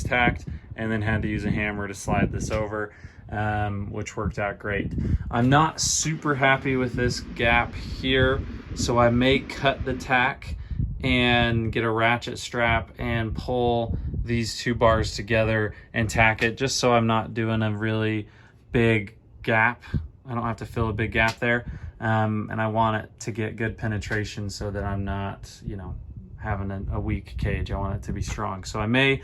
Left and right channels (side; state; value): both; identical; correlation 1.00